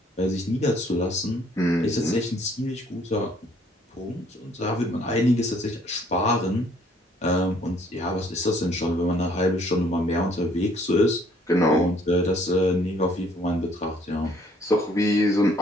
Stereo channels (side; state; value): both; normal; correlation 0.62